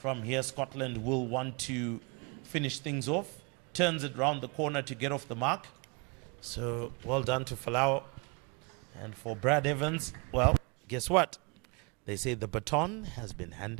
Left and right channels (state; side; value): quieter; left; 31.0 dB